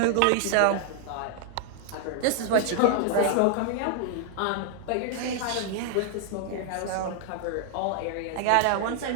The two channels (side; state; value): both; different; correlation 0.00